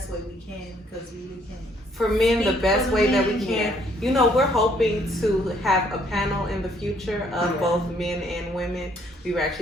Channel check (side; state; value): both; normal; correlation 0.66